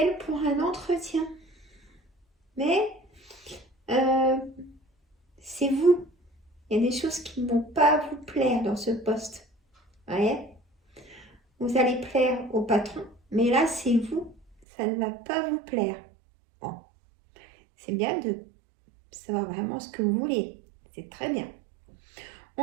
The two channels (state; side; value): drops out; left; at 14.6 s